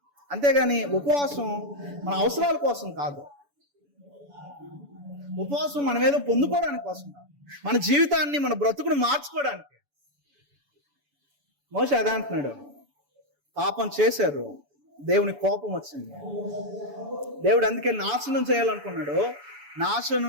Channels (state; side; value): late; left; 7.0 ms